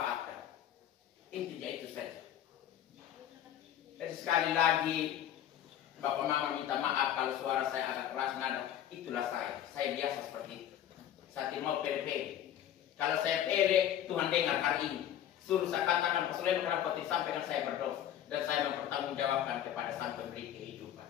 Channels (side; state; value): right; quieter; 10.9 dB